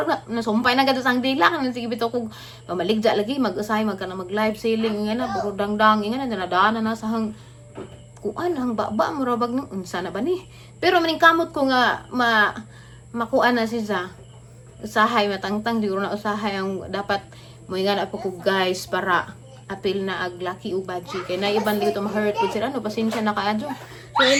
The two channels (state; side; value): identical; both; correlation 1.00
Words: na nasumpay na gadto sang dila kan sige bitaw kog mamaligja lagi mag-usay magkana mag live selling nga na puro dangdang nga na nadana na sa hang kuan hang baba mo rabag nang unsa na ba ni pero maning kamot ko nga makuan na siya usahay matangtang di na usahay ang dapat mo nga na po ko guys para apil na ag laki u budget kay na iban dito ma-hurt ko sila no pasensya na kaadyo. So